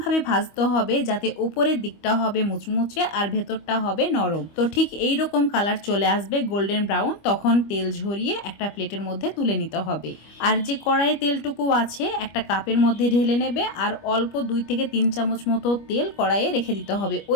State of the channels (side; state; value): right; late; 25 ms